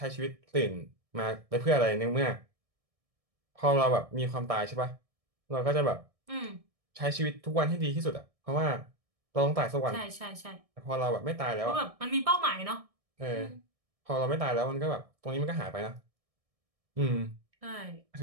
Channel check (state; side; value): late; left; 1.6 ms